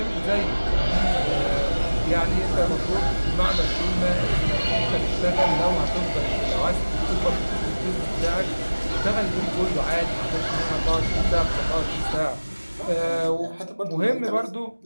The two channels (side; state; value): both; inverted; correlation -1.00